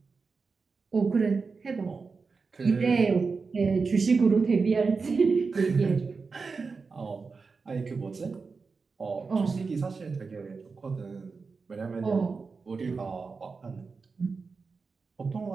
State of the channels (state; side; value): quieter; left; 4.6 dB